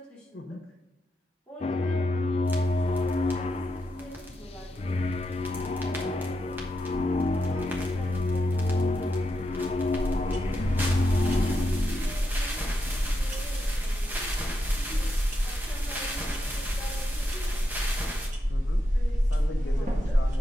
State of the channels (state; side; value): normal; both; correlation 0.85